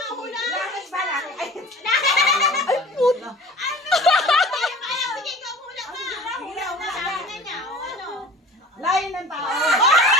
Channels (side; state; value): both; normal; correlation 0.42